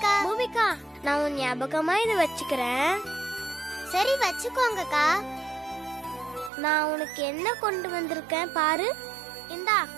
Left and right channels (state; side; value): drops out; left; at 6.5 s